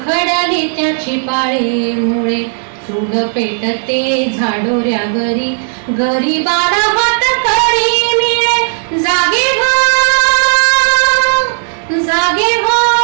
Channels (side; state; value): left; silent; digital silence